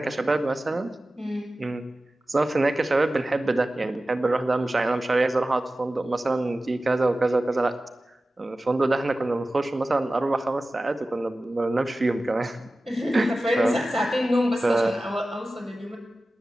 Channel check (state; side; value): normal; both; correlation 0.96